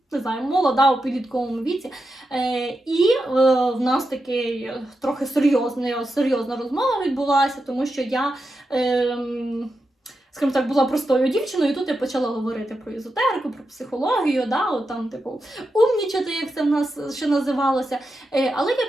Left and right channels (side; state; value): both; normal; correlation 0.88